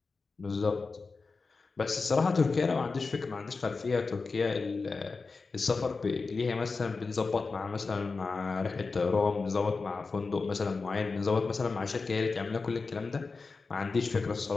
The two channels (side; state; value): right; quieter; 4.2 dB